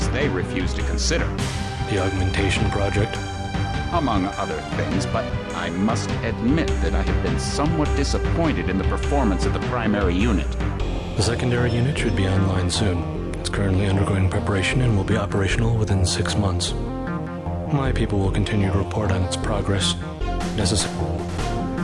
they refuse to consider. The augmentation project? Among other things, but I must admit that I have been somewhat disappointed in the performance of the primary unit. The secondary unit should be online soon. It's currently undergoing preparation and will be operational within 6 months. My people will continue to report on its progress. Necessary.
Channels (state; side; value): identical; both; correlation 1.00